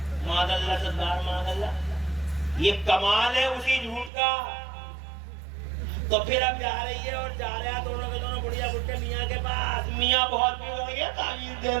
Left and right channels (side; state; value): left; drops out; at 4.1 s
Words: معاذ اللہ صدار معاذ اللہ. یہ کمال ہے اسی جھوٹ کا. تو پھر اب جا رہی ہے اور جا رہے ہیں دونوں کے دونوں بڑھیا بڑھے میاں کے پاس. میاں بہت بھی ہو گیا، تعویذ دے